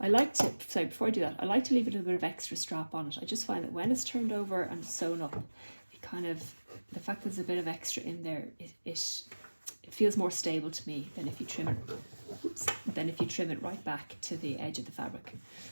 like to, sorry, before I do that, I like to leave a little bit of extra strap on it. I just find that when it's turned over and sewn up, the fact that there's a bit of extra in there, it feels more stable to me than if you trim it right back to the edge of the fabric.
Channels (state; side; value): inverted; both; correlation -1.00